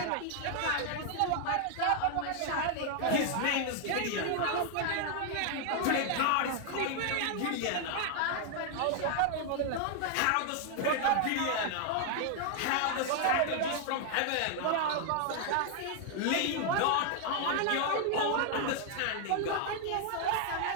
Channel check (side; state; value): both; different; correlation 0.00